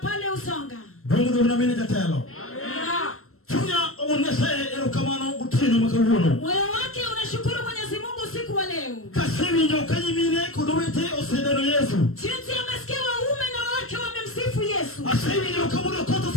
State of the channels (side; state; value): right; late; 0.62 ms